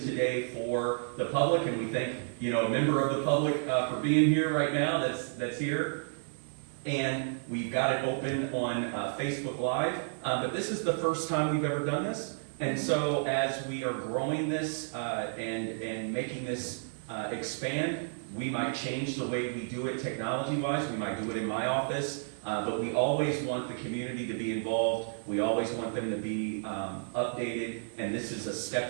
for the public, and we thank a member of the public for being here right now. That's here, and we've got it open on Facebook Live. But this is the first time we've ever done this. And so as we are growing this and making this expand, we might change the way we do it technology-wise. We might do it in my office, but we always want the community to be involved. We always want them to be updated, and this is a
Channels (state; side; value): silent; left; digital silence